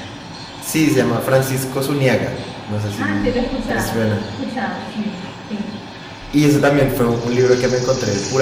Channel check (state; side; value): identical; both; correlation 1.00